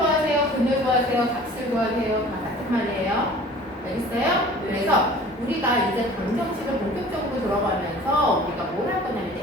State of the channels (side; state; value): both; normal; correlation 0.46